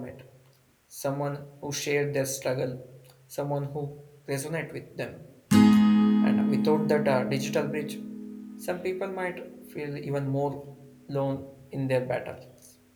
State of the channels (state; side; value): identical; both; correlation 1.00